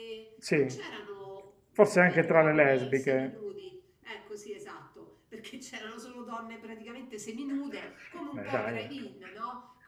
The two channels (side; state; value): both; identical; correlation 1.00